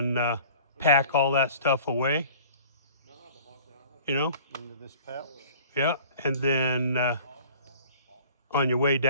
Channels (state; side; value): inverted; both; correlation -0.47